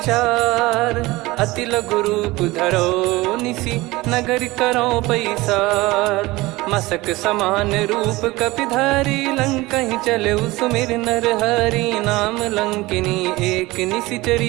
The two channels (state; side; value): quieter; left; 20.5 dB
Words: अति लघु रूप धरो निसी, नगर करो पैसार। मसक समान रूप कपि धारी, लंकहि चले सुमिर नर हरि। नाम लंकिनी एक